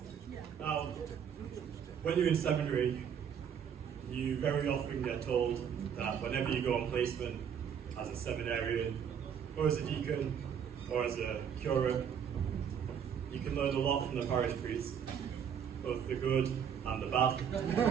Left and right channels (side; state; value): left; quieter; 8.0 dB